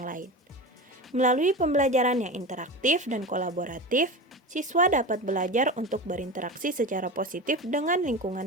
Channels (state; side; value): normal; both; correlation 0.27